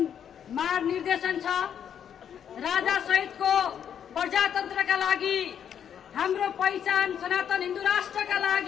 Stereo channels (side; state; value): right; quieter; 8.7 dB